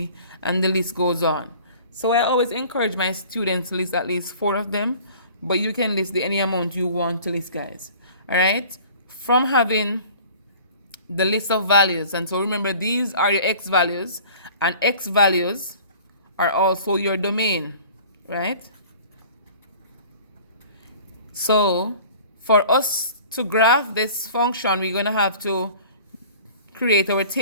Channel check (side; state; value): both; inverted; correlation -0.47